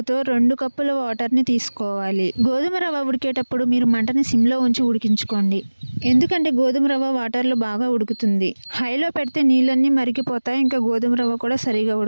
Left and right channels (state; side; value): inverted; both; correlation -1.00